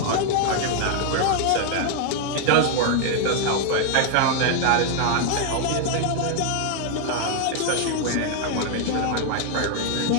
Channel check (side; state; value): both; different; correlation 0.00